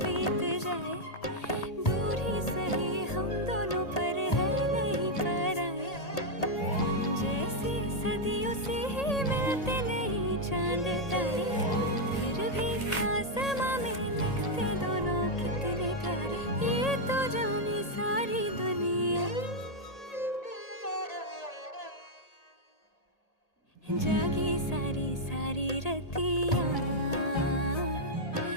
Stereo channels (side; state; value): right; late; 1.8 ms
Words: बीत जाए, दूर ही सही हम दोनों पर है नहीं पराए। जैसे सदियों से ही मिलते नहीं चांद तारे, फिर भी आसमां में लगते दोनों कितने प्यारे। ये तो जाने सारी दुनिया, जागी सारी सारी रतियाँ,